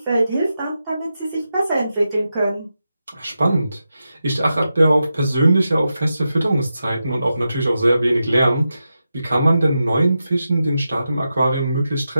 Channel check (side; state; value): both; inverted; correlation -0.89